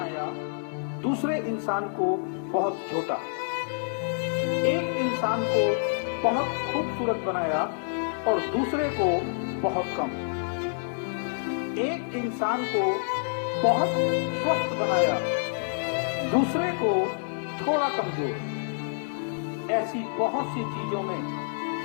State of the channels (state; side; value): silent; right; digital silence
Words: दूसरे इंसान को बहुत छोटा। एक इंसान को बहुत खूबसूरत बनाया और दूसरे को बहुत कम। एक इंसान को बहुत स्वस्थ बनाया, दूसरे को थोड़ा कमजोर। ऐसी बहुत सी चीजों में